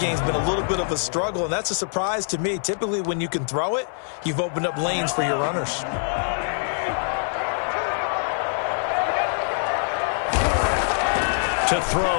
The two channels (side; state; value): right; silent; 63 dB below the other